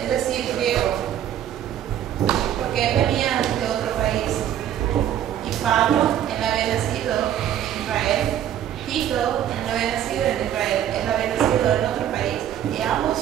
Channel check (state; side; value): quieter; left; 10.8 dB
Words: es decir, griego, porque él venía de otro país. Y Pablo, él había nacido en Israel. Tito, él no había nacido en Israel, él había nacido en otro país. Y ambos